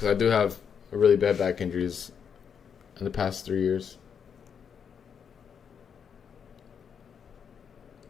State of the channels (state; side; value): quieter; right; 7.2 dB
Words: I do have really bad back injuries in the past 3 years.